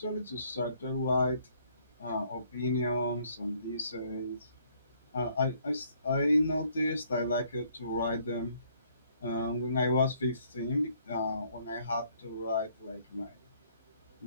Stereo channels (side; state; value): both; inverted; correlation -0.65